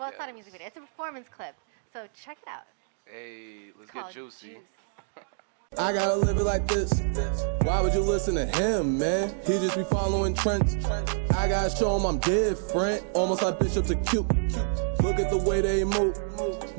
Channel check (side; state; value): left; silent; digital silence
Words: it's not a music video. It's a performance clip. So check it out. hey, let's It's get called juicy. Juice. I gotta live it like this. Why would you listen to him, man? He just be following trends. I gotta show him I'm different, almost like Bishop to cute. Look at the way they move,